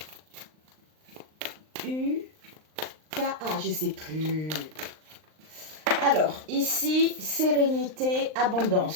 je sais plus. Alors, ici, sérénité,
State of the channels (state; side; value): late; left; 39 ms